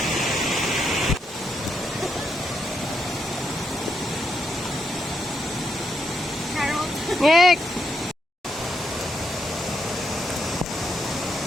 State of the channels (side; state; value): both; normal; correlation 0.80